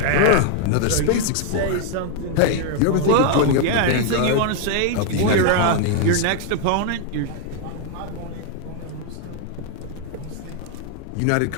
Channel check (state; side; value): different; both; correlation 0.00